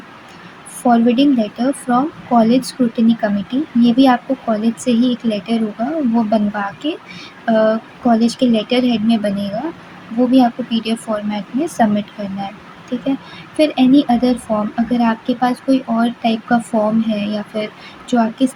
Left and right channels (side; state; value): both; identical; correlation 1.00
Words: Forwarding letter from college scrutiny committee, ये भी आपको कॉलेज से ही एक लेटर होगा वो बनवा के कॉलेज के लेटर हेड में बनेगा, वो भी आपको पीडीएफ फॉर्मेट में सबमिट करना है, ठीक है। फिर एनी अदर फॉर्म, अगर आपके पास कोई और टाइप का फॉर्म है या फिर जो आपकी